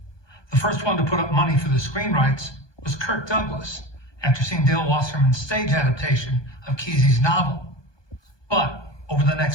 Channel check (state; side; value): late; right; 1.2 ms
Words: The first one to put up money for the screen rights was Kirk Douglas, after seeing Dale Wasserman's stage adaptation of Kesey's novel. But over the